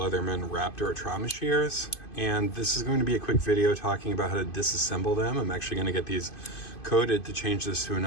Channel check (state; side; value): late; right; 2.5 ms